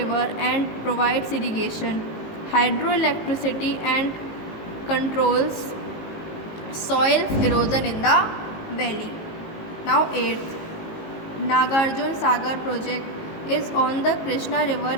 and provides irrigation, hydroelectricity and controls soil erosion in the valley. Now 8th, Nagarjun Sagar project is on the Krishna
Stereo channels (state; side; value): late; right; 19 ms